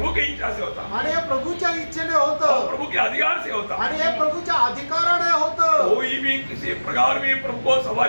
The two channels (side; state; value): both; inverted; correlation -1.00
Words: की इच्छा से होता. आणि हे प्रभूच्या इच्छेने और होतं, प्रभु के अधिकार से होता. आणि हे प्रभूच्या अधिकाराने होतं. कोई भी किसी प्रकार भी प्रभु को